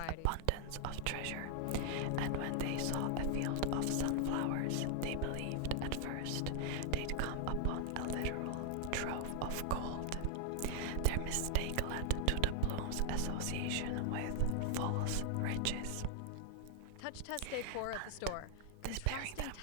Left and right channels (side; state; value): both; different; correlation 0.00